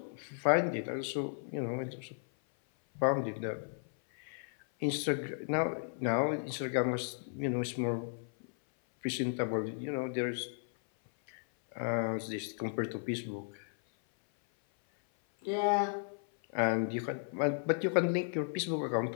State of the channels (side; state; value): right; silent; 55 dB below the other